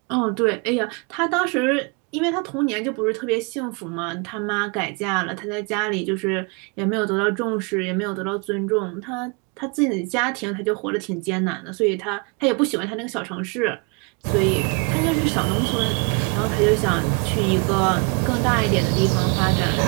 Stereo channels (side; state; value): left; quieter; 32.2 dB